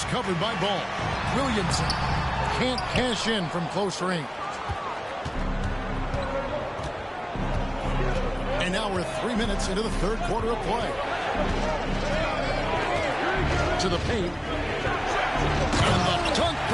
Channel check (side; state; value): both; identical; correlation 1.00